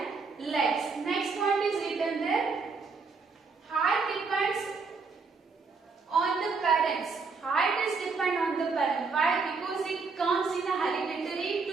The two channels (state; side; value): quieter; left; 4.7 dB